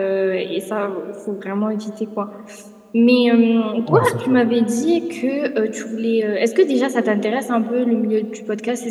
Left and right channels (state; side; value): identical; both; correlation 1.00